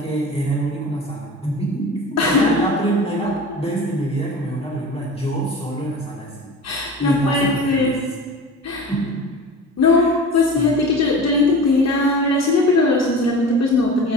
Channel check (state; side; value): normal; both; correlation 0.36